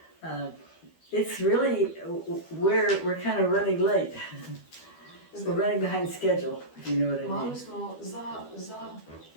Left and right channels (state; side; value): late; right; 12 ms